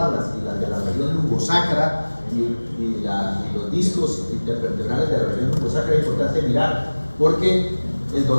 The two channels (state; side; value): inverted; both; correlation -1.00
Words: y las de la región lumbosacra y los discos intervertebrales de la región lumbosacra es importante mirar, porque el